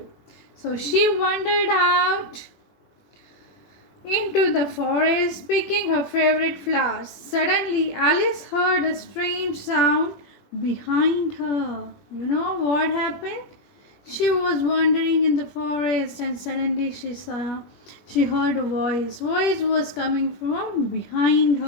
So she wandered out into the forest picking her favorite flowers. Suddenly, Alice heard a strange sound behind her. You know what happened? She was wandering in the forest and suddenly she heard a voice. Voice was coming from behind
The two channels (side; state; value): right; late; 21 ms